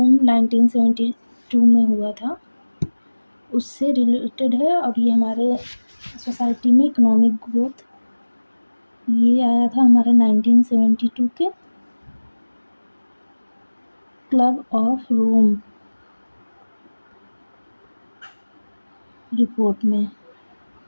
1972 में हुआ था उससे रिलेटेड है। और ये हमारे सोसाइटी में इकोनॉमिक ग्रोथ ये आया था हमारा 1972 के क्लब ऑफ रोम रिपोर्ट में।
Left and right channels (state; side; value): inverted; both; correlation -1.00